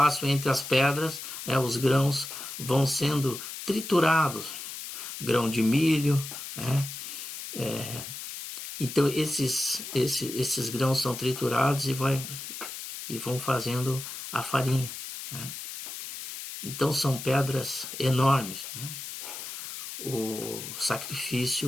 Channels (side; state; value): left; noise; hiss, 9 dB below the sound